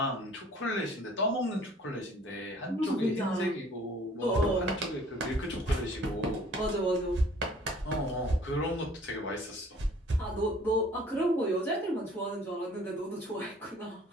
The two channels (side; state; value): both; normal; correlation 0.54